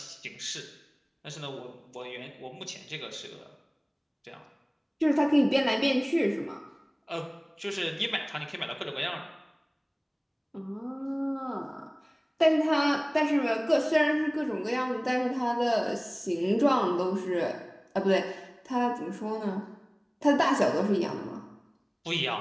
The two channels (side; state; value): both; identical; correlation 1.00